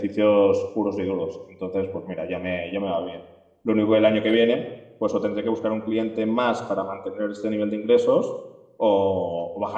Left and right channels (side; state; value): both; identical; correlation 1.00